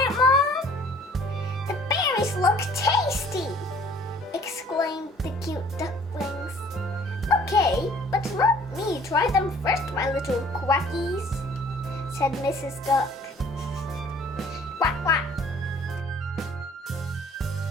it, Mom? The berries look tasty, exclaimed the cute ducklings. Okay, but let me try them first, my little quackies, said Mrs. Duck. Quack, quack.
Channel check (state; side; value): normal; both; correlation 0.54